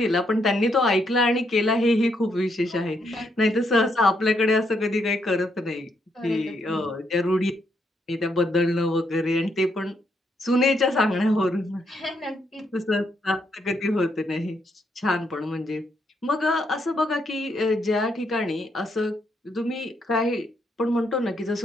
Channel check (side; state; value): both; normal; correlation 0.76